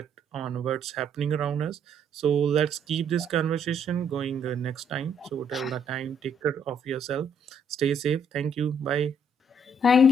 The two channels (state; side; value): normal; both; correlation 0.68